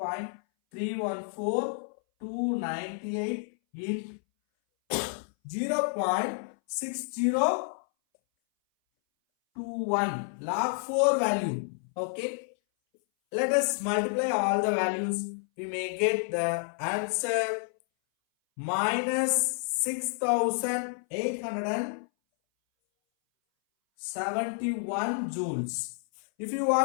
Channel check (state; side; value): silent; right; 58 dB below the other